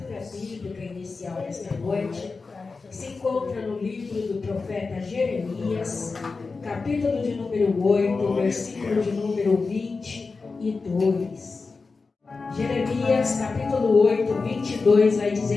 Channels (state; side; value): quieter; right; 4.2 dB